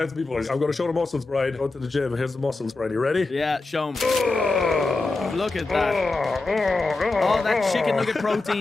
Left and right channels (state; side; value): quieter; right; 3.4 dB